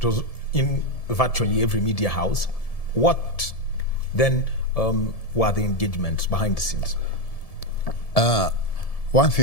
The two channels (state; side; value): late; right; 1.7 ms